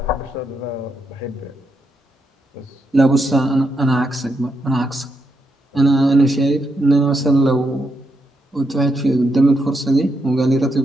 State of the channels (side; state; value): both; normal; correlation 0.81